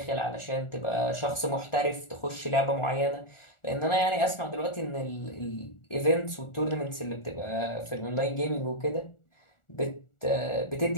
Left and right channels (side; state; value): right; late; 1.4 ms